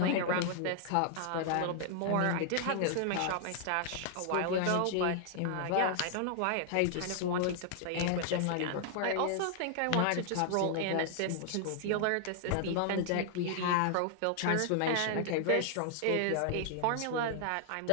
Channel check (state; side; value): different; both; correlation 0.00